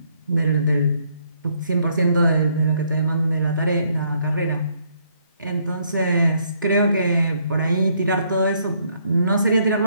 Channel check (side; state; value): both; inverted; correlation -0.69